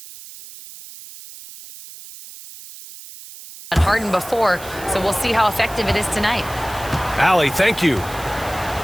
Harden before, so we'll see how effective it is tonight. Allie, thank you.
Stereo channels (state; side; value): noise; right; hiss, 16 dB below the sound